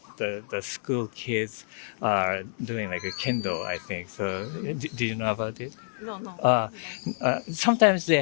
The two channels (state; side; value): silent; right; digital silence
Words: the school kids are doing like a kendo, I think. So, do you know about it? No. Sometimes they